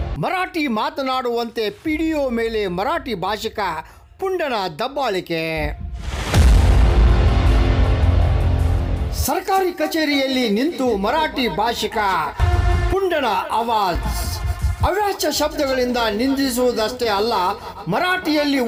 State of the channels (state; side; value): identical; both; correlation 1.00